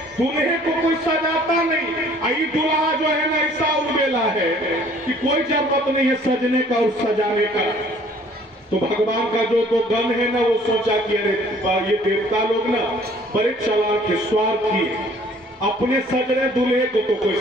दूल्हे को कोई सजाता नहीं। आई दूल्हा जो है ना ऐसा उड़ेला है कि कोई जरूरत नहीं है सजने का और सजाने का। तो भगवान का जो तो गण है ना वो सोचा कि अरे ये देवता लोग ना बड़े चालाक है, स्वार्थी है, अपने सज रहे दूल्हे को तो कोई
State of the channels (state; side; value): normal; both; correlation 0.56